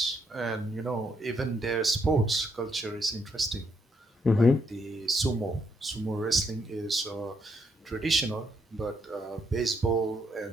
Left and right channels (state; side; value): normal; both; correlation 0.75